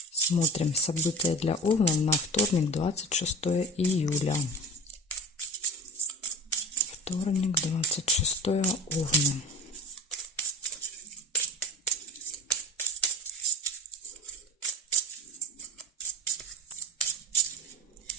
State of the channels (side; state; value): both; normal; correlation 0.34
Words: события для Овна на вторник, 26 июля. Вторник, 26 Овны.